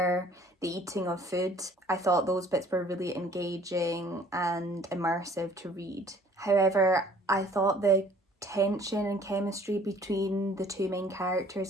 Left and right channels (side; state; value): both; normal; correlation 0.54